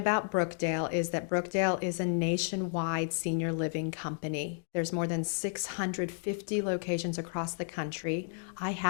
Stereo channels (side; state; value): right; silent; digital silence